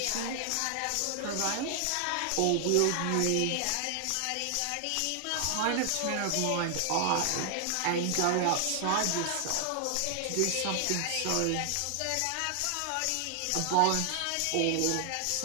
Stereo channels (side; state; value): both; different; correlation 0.00